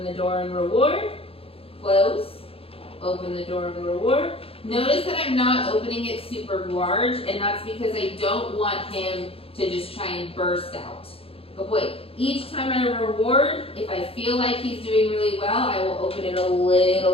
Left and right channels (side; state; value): right; late; 0.27 ms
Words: the door and reward, close, open the door and reward. Notice that I'm not opening it super large, and that's because I don't want him to just try and burst out. Good boy, each time I reward, if I feel like he's doing really well, I will open it a